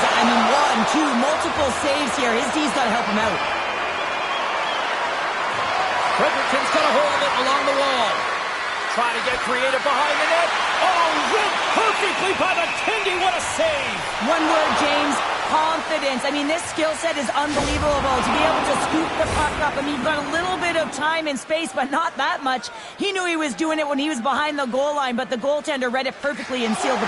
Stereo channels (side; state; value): both; identical; correlation 1.00